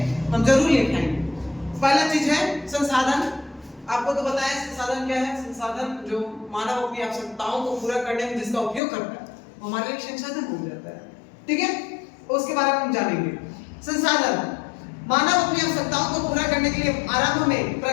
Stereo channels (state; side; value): drops out; right; at 8.8 s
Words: हम जरूर लिखाएंगे। पहला चीज है संसाधन। आपको तो बताया संसाधन क्या है। संसाधन जो मानव अपनी आवश्यकताओं को पूरा करने में जिसका उपयोग करता है वो हमारे लिए संसाधन हो जाता है, ठीक है। उसके बारे में हम जानेंगे। संसाधन, मानव अपनी आवश्यकताओं को पूरा करने के लिए आरंभ में